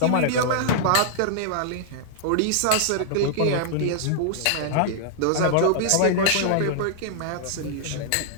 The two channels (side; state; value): both; different; correlation -0.01